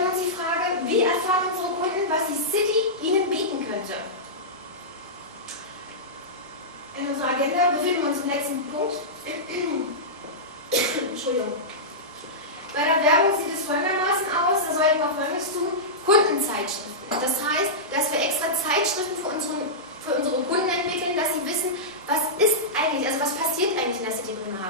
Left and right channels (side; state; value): both; normal; correlation -0.13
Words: wir uns die Frage, wie erfahren unsere Kunden, was die City ihnen bieten könnte. In unserer Agenda befinden wir uns im letzten Punkt. Entschuldigung. Bei der Werbung sieht es folgendermaßen aus, da sollten wir Folgendes tun: Kundenzeitschriften. Das heißt, dass wir extra Zeitschriften für unsere Kunden entwickeln, dass sie wissen, was ist eigentlich, also was passiert eigentlich in der City